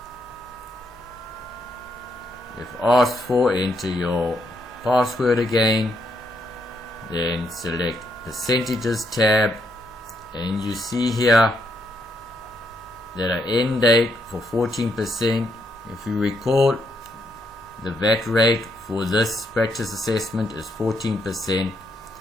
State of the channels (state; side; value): normal; both; correlation 0.77